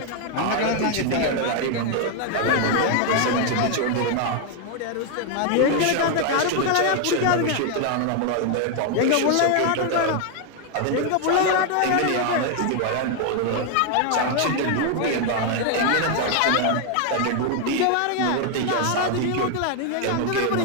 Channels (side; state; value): both; different; correlation 0.01